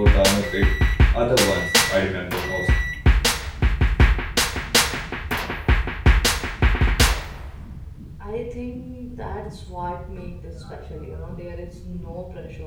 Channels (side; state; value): both; identical; correlation 1.00